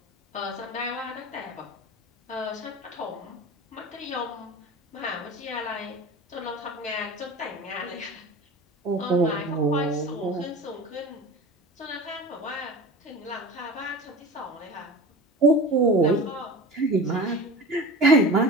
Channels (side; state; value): both; normal; correlation 0.33